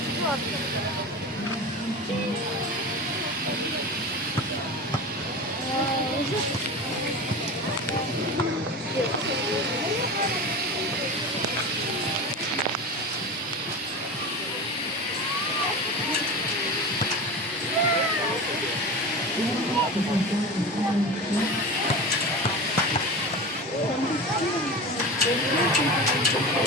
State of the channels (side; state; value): both; normal; correlation 0.29